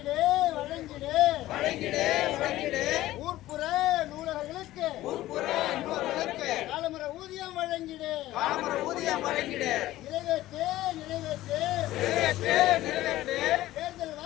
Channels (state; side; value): quieter; right; 15.6 dB